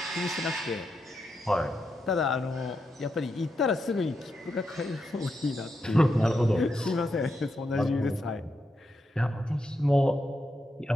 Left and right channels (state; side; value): normal; both; correlation 0.84